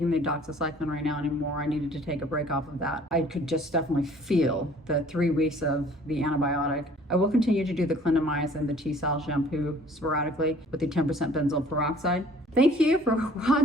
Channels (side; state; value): both; normal; correlation 0.53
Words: the Doxycycline right now anymore. I needed to take a break off of that. I could just definitely feel the 3 weeks of the antibiotic. I will continue to do the Clindamycin, the T-cell shampoo sporadically with the 10% benzoyl peroxide. Thank you for